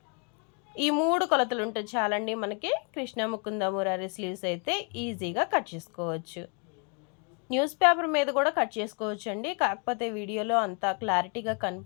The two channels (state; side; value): quieter; right; 37.8 dB